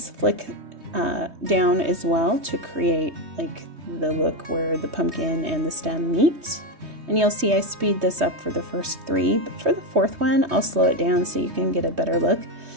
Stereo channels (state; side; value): late; left; 3.2 ms